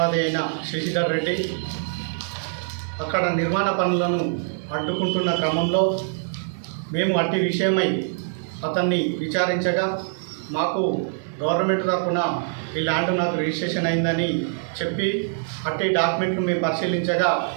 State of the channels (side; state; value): left; silent; digital silence